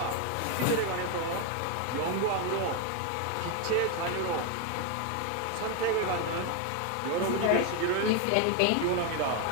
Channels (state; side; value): different; both; correlation 0.01